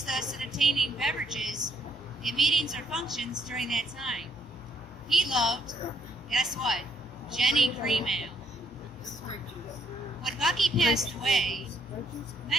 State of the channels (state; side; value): normal; both; correlation 0.71